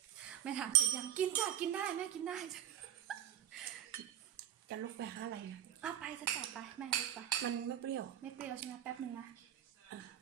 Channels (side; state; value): left; quieter; 11.5 dB